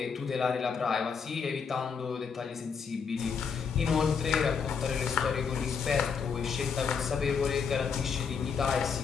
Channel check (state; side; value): quieter; right; 6.1 dB